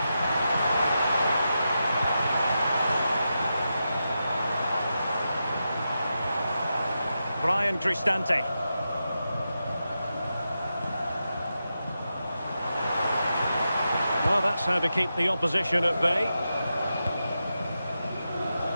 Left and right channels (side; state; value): both; inverted; correlation -0.89